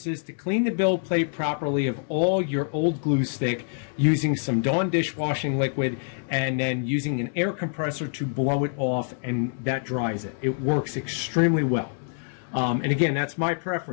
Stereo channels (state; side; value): silent; right; digital silence